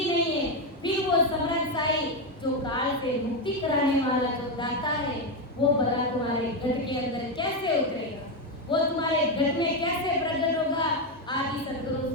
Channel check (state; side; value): normal; both; correlation 0.08